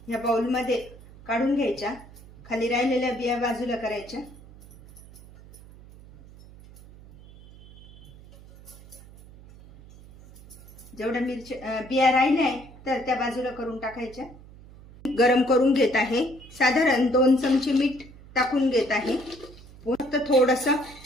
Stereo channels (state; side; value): noise; right; hum, 21 dB below the sound